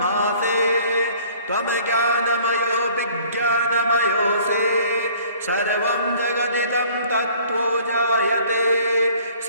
त्वं ज्ञानमयो विज्ञानमयोऽसि सर्वं जगदिदं तत्त्वो जायते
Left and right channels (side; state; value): both; inverted; correlation -0.53